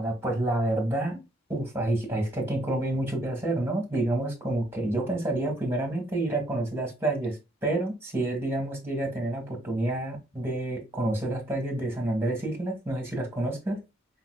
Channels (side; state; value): both; normal; correlation 0.69